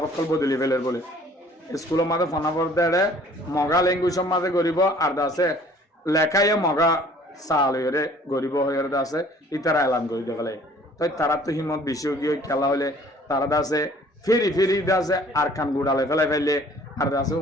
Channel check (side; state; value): both; normal; correlation 0.54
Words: বদলি ফেলের বলে স্কুলের মাঝে ফোনাবর দেড়ে মগা ল্যাঙ্গুয়েজের মাঝে গরিব আর দাসে লেখাইয়ে মগা চাল হয়ে গরিব হয়ে দাসে ইতারা এলান করে দেখলে তো তারা তো হিমত বেশি গিয়ে খেলা হলে তারা দাসে ফিরি দাসে আর কান গুড়ালে ফেলে আর দাসে